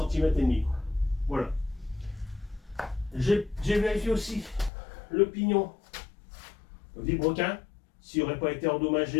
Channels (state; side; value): drops out; right; at 4.7 s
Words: cm. Voilà. J'ai vérifié aussi le pignon Vibroquin, s'il n'aurait pas été